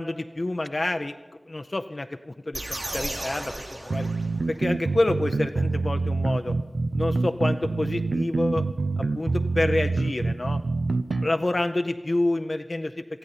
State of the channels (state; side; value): normal; both; correlation 0.96